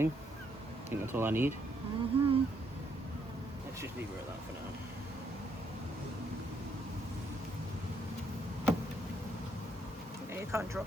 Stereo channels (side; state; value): both; normal; correlation 0.73